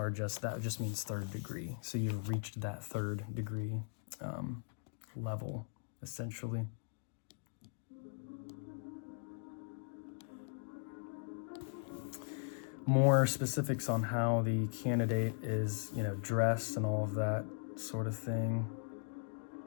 just means 3rd degree. So you've reached that 3rd degree level, essentially. more specifics on how the candidate is, dressed and all of that sort of thing.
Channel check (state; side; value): silent; right; digital silence